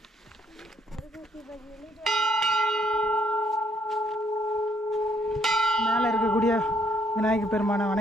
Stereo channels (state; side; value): normal; both; correlation 0.69